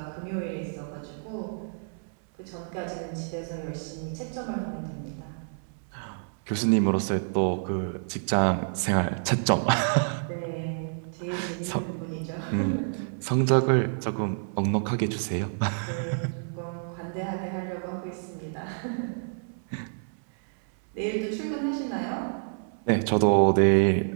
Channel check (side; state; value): left; silent; 59 dB below the other